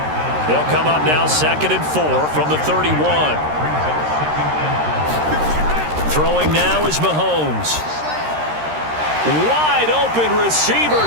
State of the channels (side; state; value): left; late; 13 ms